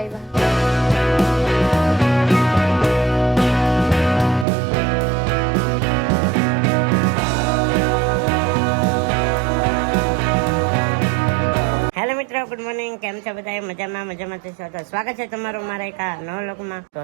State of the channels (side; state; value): left; drops out; at 4.5 s